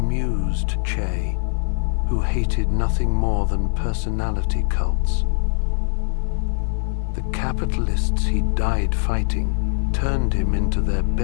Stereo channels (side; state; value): right; silent; digital silence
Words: Che, who hated nothing more than personality cults. The capitalists he died fighting turned him into their